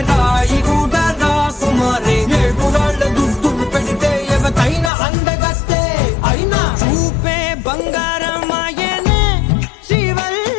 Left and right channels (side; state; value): right; drops out; at 4.9 s